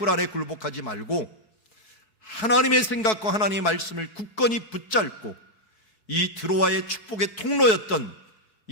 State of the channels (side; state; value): right; late; 4.6 ms